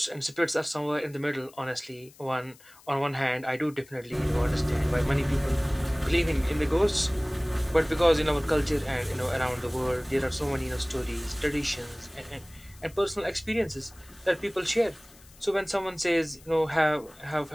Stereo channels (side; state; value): left; noise; hiss, 25 dB below the sound